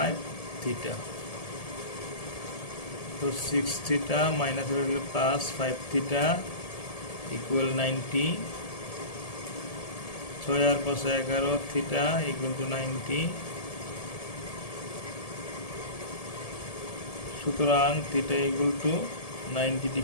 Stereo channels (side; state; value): right; late; 1.7 ms